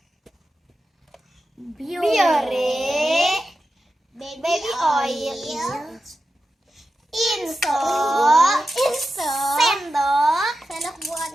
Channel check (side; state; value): both; normal; correlation 0.91